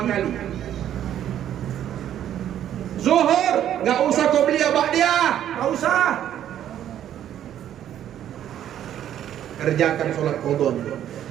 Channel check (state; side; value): quieter; left; 10.8 dB